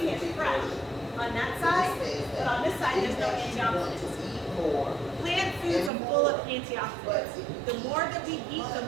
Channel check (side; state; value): left; drops out; at 5.9 s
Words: it fresh on that side, but on this side there's no antioxidants. Plant foods are full of antioxidants. The more that we eat, the